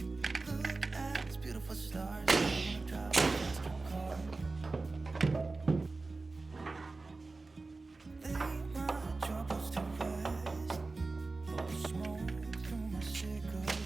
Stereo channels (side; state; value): left; quieter; 3.6 dB